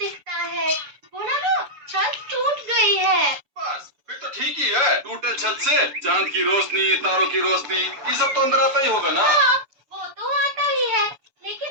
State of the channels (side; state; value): left; late; 7.1 ms